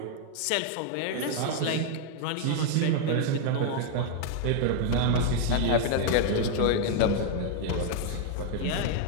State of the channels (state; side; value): different; both; correlation 0.00